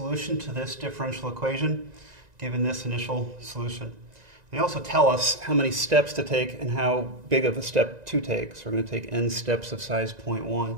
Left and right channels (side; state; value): left; late; 1.9 ms